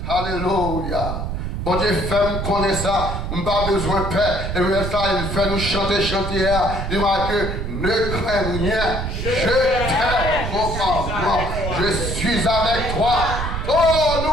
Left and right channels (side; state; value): right; noise; rumble, 4 dB below the sound